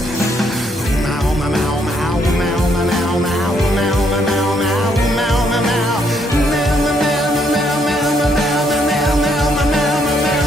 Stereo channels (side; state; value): both; normal; correlation 0.72